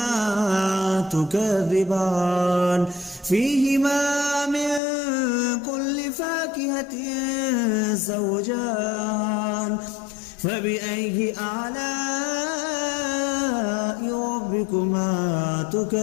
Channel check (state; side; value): drops out; right; at 4.8 s